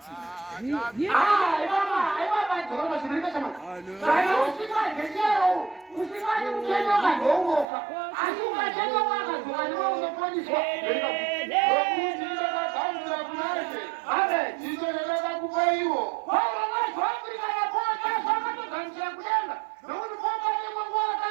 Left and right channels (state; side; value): drops out; left; at 7.7 s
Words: Ibaba zvirike chamani. Kana usingadye chero, usingadi kutenyoka ndounofa. Asi ukachenyoka akadzoka ndiwe unoponiswa.